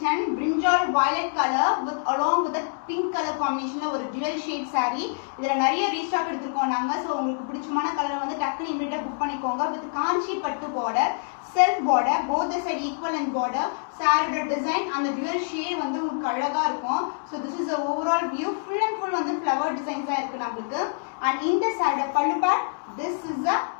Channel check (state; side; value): silent; right; digital silence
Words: brinjal violet color with along with the pink color combination ஒரு dual shade saree இதல நிறைய restock எடுத்துறோம் நாங்க so உங்களுக்கு பிடிச்சமான கலரை வந்து டக்குனு இமிடியேட்டா புக் பண்ணிக்கோங்க with காஞ்சி பட்டு border self border both the side equal and border saree design and the dual shade வந்து உங்களுக்கு அழகா இருக்கும் so this is the overall view full and full வந்து flower designs ஆ இருக்கு நமக்கு and இந்த saree pallu part this is a